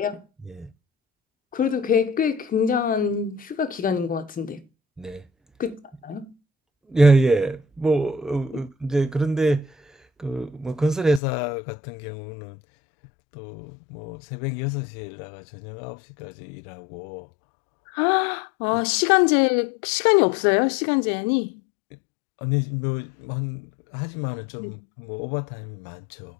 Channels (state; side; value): drops out; right; at 11.2 s